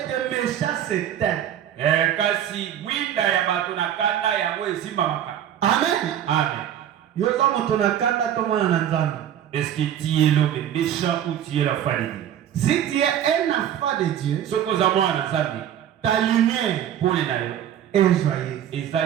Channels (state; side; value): quieter; left; 10.3 dB